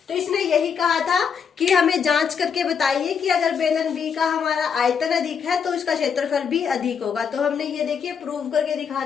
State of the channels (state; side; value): quieter; right; 6.7 dB